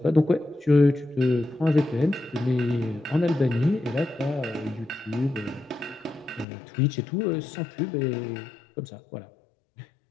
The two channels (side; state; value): right; drops out; at 6.5 s